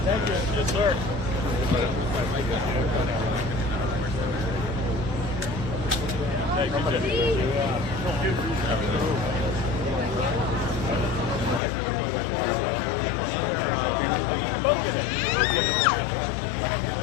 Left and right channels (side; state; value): right; drops out; at 11.6 s